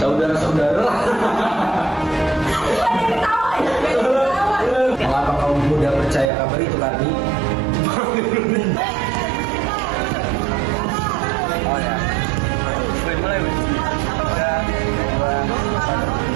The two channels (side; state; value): left; drops out; at 6.3 s